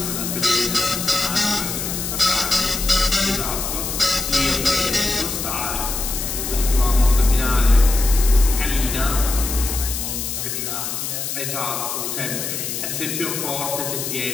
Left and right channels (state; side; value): noise; left; hiss, 4 dB below the sound